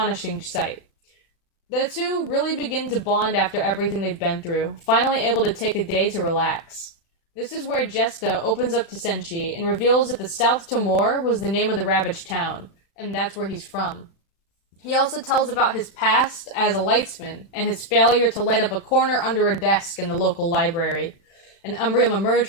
sight. The two really begin to bond after everything they've been through, finally able to take a day to relax. This is where Jesta opens up to Senshi and reveals that the South Timor was the name of the ravaged town, and that's where he's from. He also tells about his past as a lightsman and his failure to light up a corner under a desk in the local library. An Umbrium emerged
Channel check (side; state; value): right; late; 36 ms